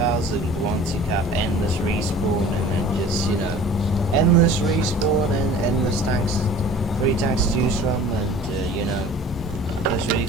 and the ones you have endless respawn, and then just, endless respawn and endless tanks, free tanks to choose from, and, those really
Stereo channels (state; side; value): normal; both; correlation 0.45